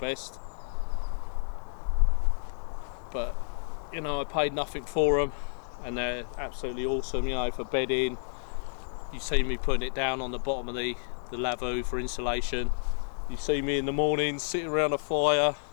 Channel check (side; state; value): right; silent; digital silence